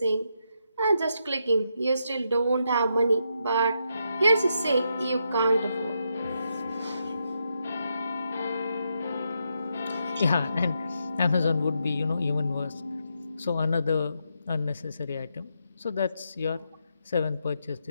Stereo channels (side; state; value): both; inverted; correlation -0.81